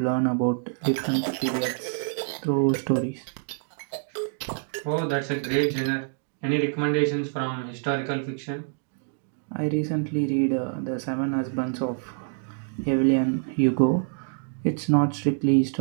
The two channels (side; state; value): left; silent; 61 dB below the other